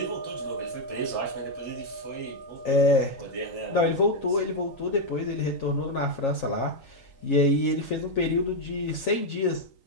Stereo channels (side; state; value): right; late; 3.9 ms